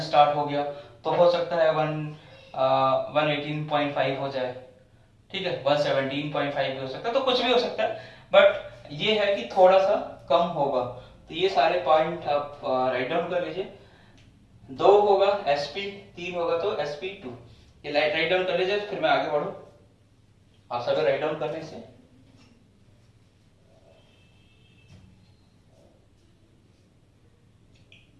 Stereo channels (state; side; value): identical; both; correlation 1.00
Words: स्टार्ट हो गया, तो हो सकता है 118.5 हो जाए, ठीक है, 117.5 भी हो सकता है, तो कुछ भी हो सकता है, बट ये है कि थोड़ा सा कम होगा। तो ये सारे पॉइंट आप राइट डाउन कर लीजिए। 2 होगा sp, 3 होगा तो sp2, ये राइट डाउन कर लीजिए, फिर मैं आगे बढ़ू आप सभी राइट डाउन करने से।